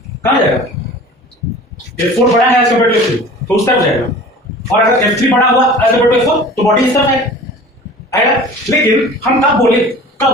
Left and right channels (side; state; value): both; normal; correlation 0.42